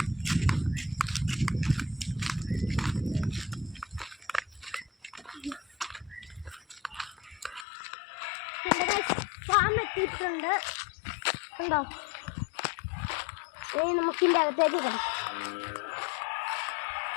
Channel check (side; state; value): right; drops out; at 7.7 s